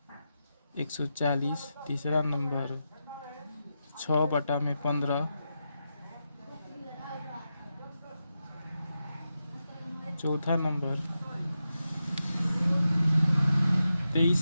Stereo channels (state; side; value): inverted; both; correlation -0.89